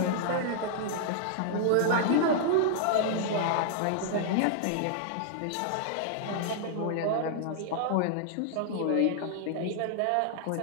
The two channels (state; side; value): different; both; correlation -0.01